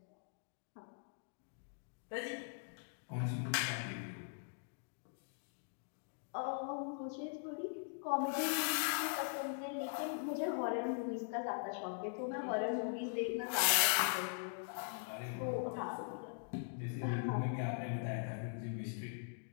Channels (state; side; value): silent; right; digital silence